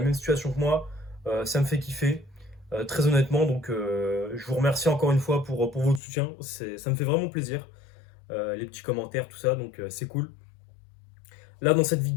même situation que moi, ça me fait kiffer. Très honnêtement, donc je vous remercie encore une fois pour votre soutien. Ça me fait vraiment plaisir. Les petits commentaires, tout ça, donc c'est cool. Là, dans cette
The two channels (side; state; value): right; drops out; at 6.0 s